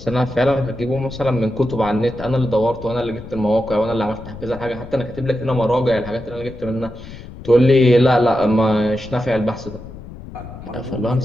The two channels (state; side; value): noise; left; rumble, 15 dB below the sound